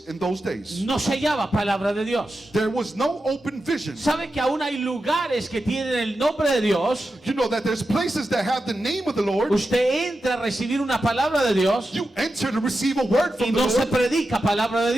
in those days. No se hallaba palabra de Dios. There was no open vision. ¿Sabe que aún hay lugares que tienen el nombre de Dios? You know that there's places that have the name of the Lord. Usted entra a recibir una palabra de Dios You enter to receive a word y from the no se Lord, predica palabra de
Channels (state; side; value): normal; both; correlation 0.90